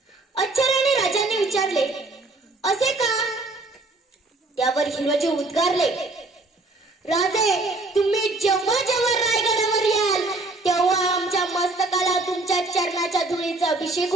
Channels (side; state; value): left; quieter; 3.1 dB